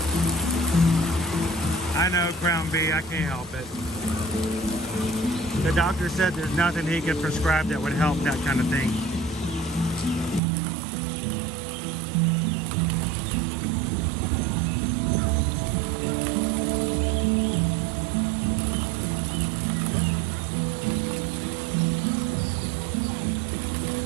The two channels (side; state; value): left; drops out; at 10.4 s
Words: I know, Crown B, I can't help it. The doctor said there's nothing he could prescribe that would help that kind of thing.